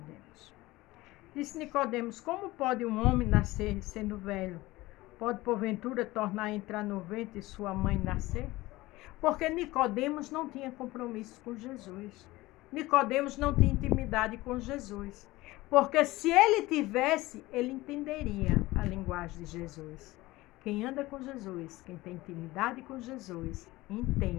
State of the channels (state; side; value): quieter; right; 19.2 dB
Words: Disse Nicodemos: como pode um homem nascer sendo velho? Pode porventura tornar a entrar no ventre de sua mãe nascer? Porque Nicodemos não tinha compromisso com Jesus. Nicodemos não tinha intimidade com Jesus. Porque se ele tivesse, ele entenderia a linguagem de Jesus. Quem anda com Jesus, quem tem intimidade com Jesus,